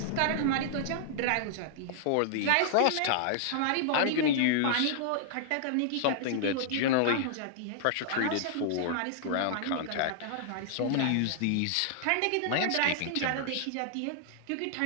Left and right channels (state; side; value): different; both; correlation -0.01